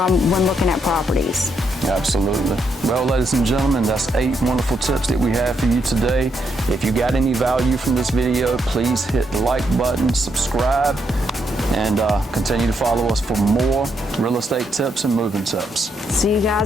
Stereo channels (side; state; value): both; normal; correlation 0.78